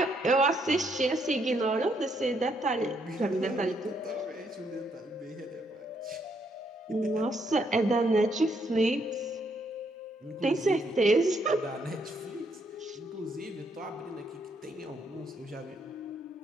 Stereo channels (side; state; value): both; normal; correlation 0.74